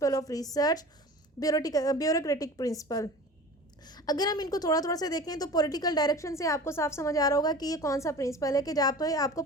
of research, bureaucratic principle. अगर हम इनको थोड़ा थोड़ा से देखें तो पॉलिटिकल डायरेक्शन से आपको साफ समझ आ रहा होगा कि ये कौन सा प्रिंसिपल है कि जहाँ पर आपको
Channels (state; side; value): normal; both; correlation 0.38